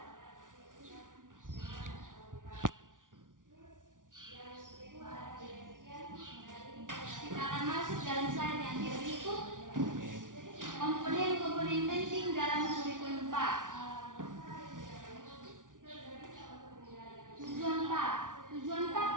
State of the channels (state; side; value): late; left; 0.88 ms